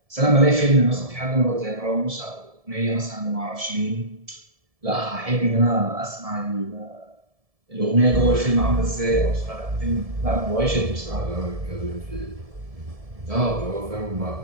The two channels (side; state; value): left; late; 1.7 ms